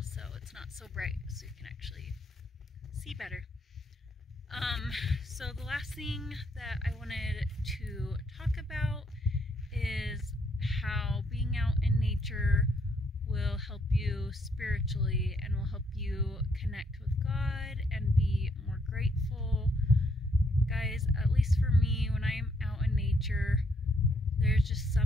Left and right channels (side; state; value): both; normal; correlation 0.72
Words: so it's not so bright, so you can actually see better. So the last thing that I wanted to talk about is how being out in nature will help you spiritually and will help you connect with God and be more grateful. Guys, at least for me, when I'm out in nature, there's just